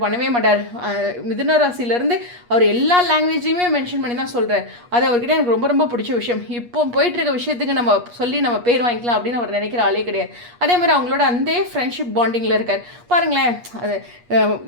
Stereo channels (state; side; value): late; left; 8.4 ms